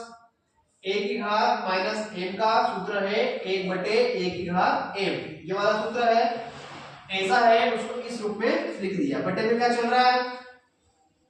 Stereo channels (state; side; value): identical; both; correlation 1.00